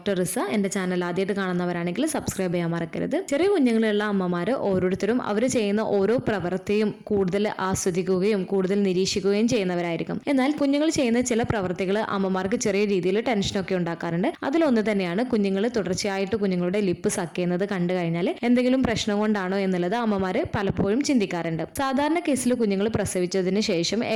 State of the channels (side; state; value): both; identical; correlation 1.00